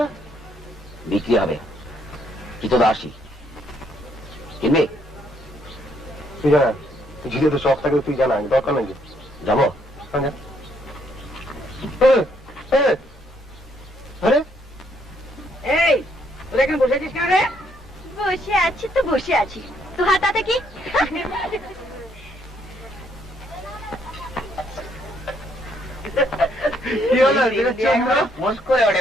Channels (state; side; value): normal; both; correlation 0.70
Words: বিক্রি হবে, কি তো আসি কিনবে? তুই জানা, ঝিলে তো শখ থাকে, তুই জানা, দরকার নেই। যাবো। আরে এই তোরা এখানে বসে আছিস কেন রে? বসে আছি তো বসে আছি, তো হাতাতে কি? কি হলো? মোস করে ওঠে